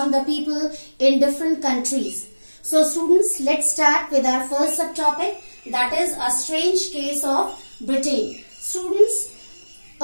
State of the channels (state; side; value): inverted; both; correlation -1.00